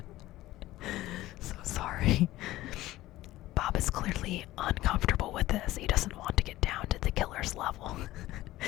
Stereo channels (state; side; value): quieter; right; 16.3 dB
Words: So sorry. Bob is clearly uncomfortable with this. He doesn't want to get down to the killer's level.